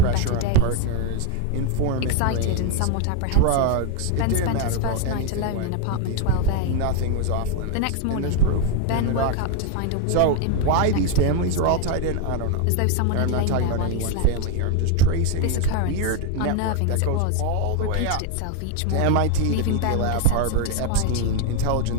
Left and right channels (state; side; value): different; both; correlation 0.01